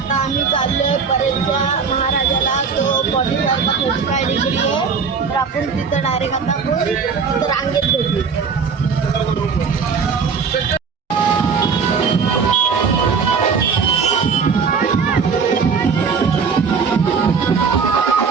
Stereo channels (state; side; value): quieter; left; 5.6 dB